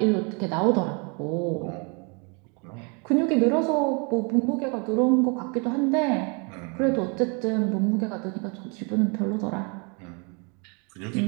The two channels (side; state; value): left; quieter; 34.1 dB